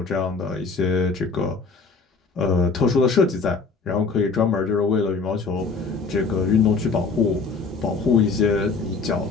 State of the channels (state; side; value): quieter; right; 4.5 dB